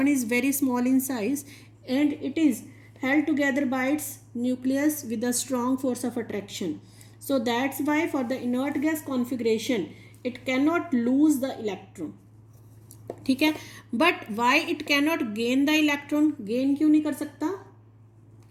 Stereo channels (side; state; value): both; identical; correlation 1.00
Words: is very small in size and it is held together by its nucleus with a strong force of attraction. So that's why for the inert gas configuration it cannot lose the electron. ठीक है, but why it cannot gain the electron? gain क्यों नहीं कर सकता?